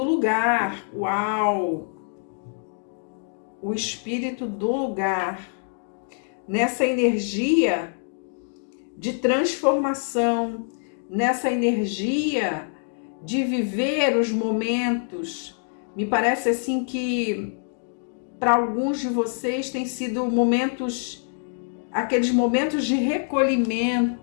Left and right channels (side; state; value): right; silent; digital silence